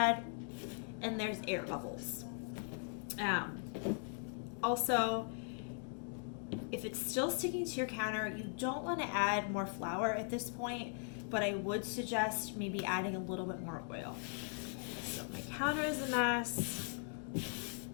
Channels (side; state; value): right; silent; 51 dB below the other